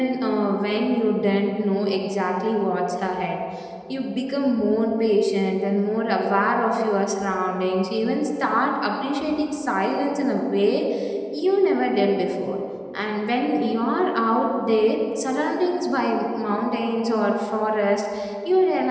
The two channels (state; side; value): identical; both; correlation 1.00